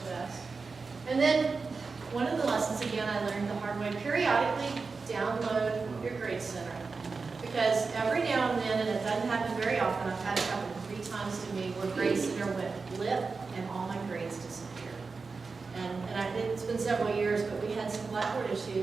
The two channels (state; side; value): quieter; left; 4.5 dB